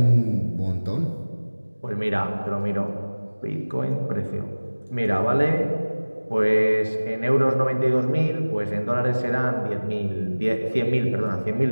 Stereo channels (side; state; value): both; inverted; correlation -1.00